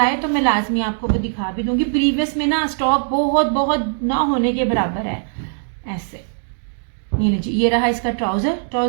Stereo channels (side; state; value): left; silent; digital silence